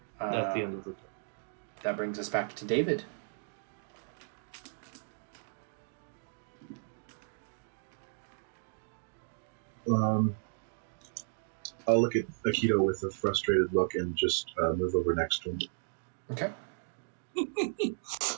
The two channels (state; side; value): silent; left; digital silence